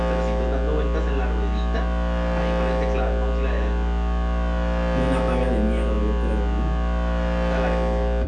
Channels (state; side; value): identical; both; correlation 1.00